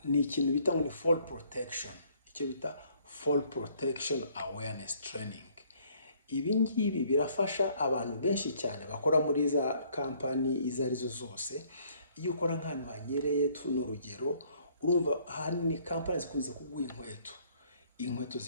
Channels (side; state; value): both; inverted; correlation -0.63